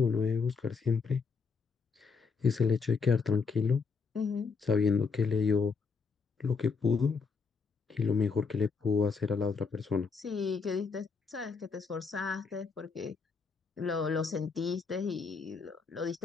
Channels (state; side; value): quieter; right; 5.1 dB